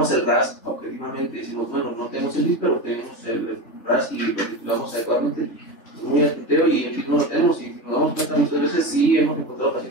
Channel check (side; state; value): right; late; 3.4 ms